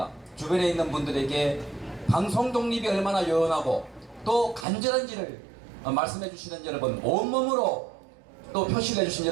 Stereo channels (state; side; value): drops out; left; at 4.7 s